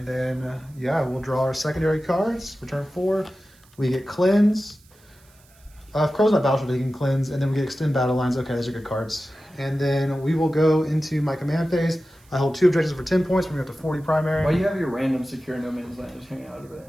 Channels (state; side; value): noise; right; hiss, 30 dB below the sound